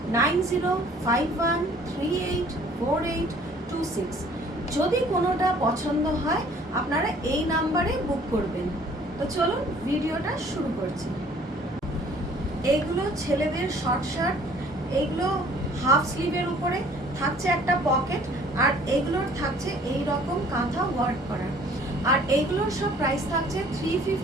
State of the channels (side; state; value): both; normal; correlation 0.54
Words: 9051384826। যদি কোনোটা পছন্দ হয় আপনারা এই নাম্বারে বুক করবেন। তো চলুন ভিডিওটা শুরু করছি। এইগুলো ছেলেদের শর্ট শার্ট, এইগুলো হাফ স্লিভের উপরে থাকছে একটা পকেট, আর এইগুলোর থাকছে এই রকম কাঁথা ওয়ার্ক করা। আর এইগুলোর সব প্রাইস থাকছে